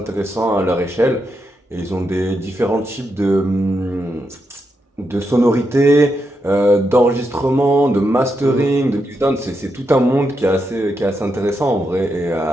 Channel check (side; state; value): both; normal; correlation 0.84